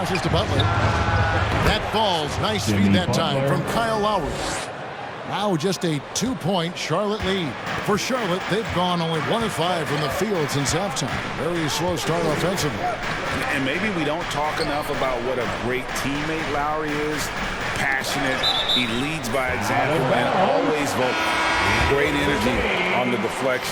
to Butler. That falls. Nice feed that time from Kyle Lowry. Now just a 2-point Charlotte lead. For Charlotte, they've gone only 1 of 5 from the field since halftime. Very slow start offensively. And maybe we don't talk enough about what a great teammate Lowry is. Passionate, he leads by example, and always vocal. Great energy on the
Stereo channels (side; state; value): both; identical; correlation 1.00